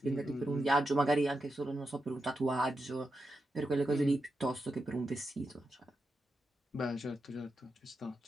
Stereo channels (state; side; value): normal; both; correlation 0.87